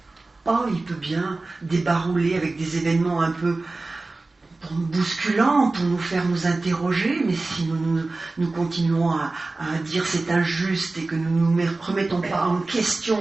Oh, il peut bien débarouler avec des événements un peu bousculants pour nous faire nous interroger, mais si nous continuons à dire c'est injuste et que nous ne nous remettons pas en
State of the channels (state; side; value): quieter; left; 3.3 dB